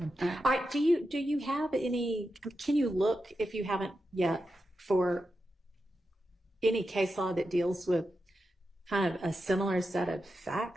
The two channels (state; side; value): normal; both; correlation 0.89